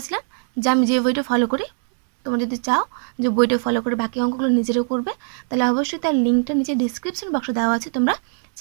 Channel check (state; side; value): silent; left; 55 dB below the other